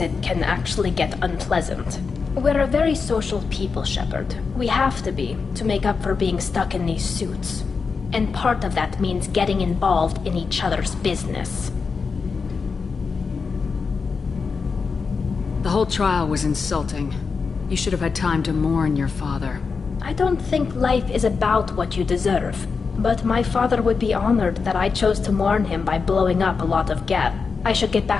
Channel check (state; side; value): quieter; right; 5.1 dB